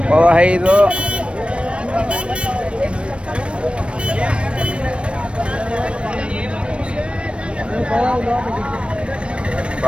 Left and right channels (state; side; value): late; left; 0.059 ms